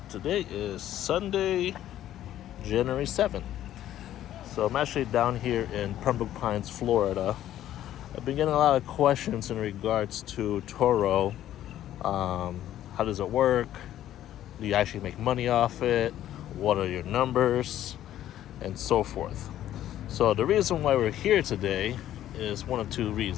is Sunday, January 7th. So I'm actually down here in Pembroke Pines, Florida. I've been getting a lot of questions in regards to Turo. How does it work? Do you actually make money off it? What are your numbers? And so forth. So the reason why we're here today is one of two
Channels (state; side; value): quieter; right; 12.3 dB